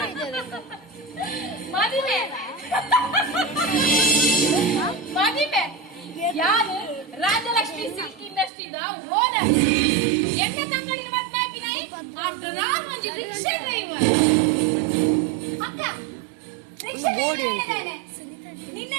ಮದುವೆ ಮದುವೆ ಯಾರು ರಾಜಲಕ್ಷ್ಮಿ ಸಿಲ್ಕ್ ಇಂಡಸ್ಟ್ರಿದ ಓನರ್ ಎಣ್ಣೆ ತಂಗಡಿನ ಮದ್ವೆ ಹಾಕಿನಾಯಿ ಆಫ್ಟರ್ ಆಲ್ ಮಂಜಿ ರಿಕ್ಷಾ ಡ್ರೈವರ್ ಅಕ್ಕ ರಿಕ್ಷಾ ಡ್ರೈವರ್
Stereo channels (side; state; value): left; drops out; at 8.5 s